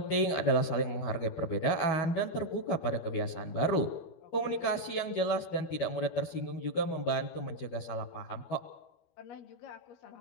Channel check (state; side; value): late; right; 12 ms